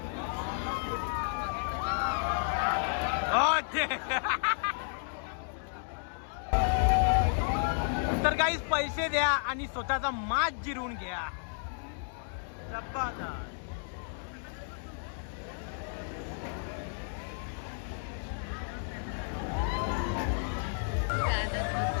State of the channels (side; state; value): right; silent; digital silence